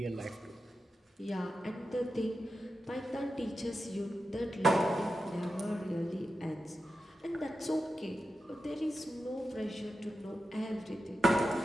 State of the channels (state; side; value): normal; both; correlation 0.91